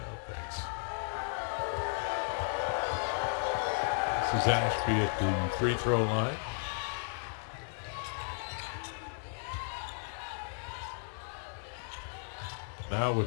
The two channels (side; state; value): right; silent; 55 dB below the other